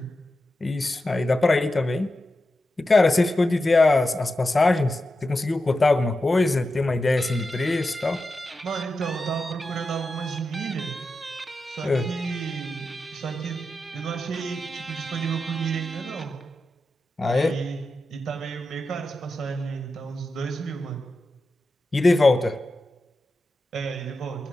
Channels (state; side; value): normal; both; correlation 0.90